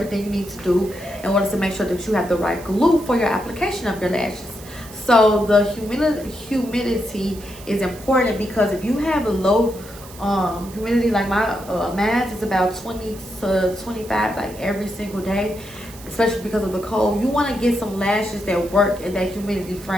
you need to do in order to make sure that you have the right glue for your application of your lashes. So the humidity is important, because if you have a low humidity, like my mask is about 20 to 25 like every single day, especially because of the cold. You want to get some lashes that work in that humidity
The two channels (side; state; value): right; noise; hiss, 19 dB below the sound